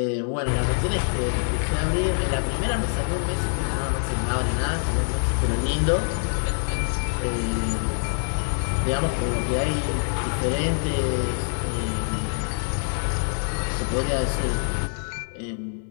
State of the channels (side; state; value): right; silent; 60 dB below the other